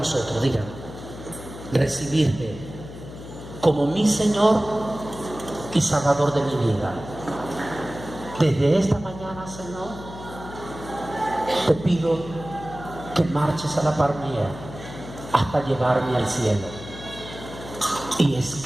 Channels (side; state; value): left; noise; hum, 13 dB below the sound